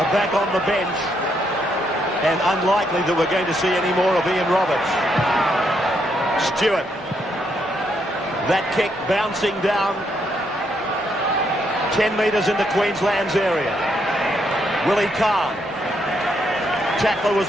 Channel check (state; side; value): normal; both; correlation 0.76